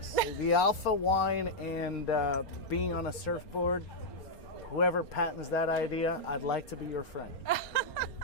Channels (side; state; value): right; late; 4.3 ms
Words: The alpha wine and being on a surfboard, whoever patents that idea, I'd like to be your friend.